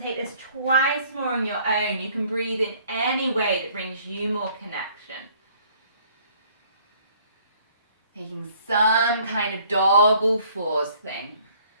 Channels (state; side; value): inverted; both; correlation -0.59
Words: take this twice more on your own. You can breathe in any way that brings you more connection. Taking some kind of dog or fours thing.